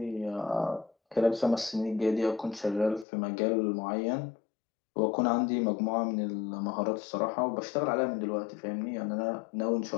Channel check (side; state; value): right; drops out; at 3.1 s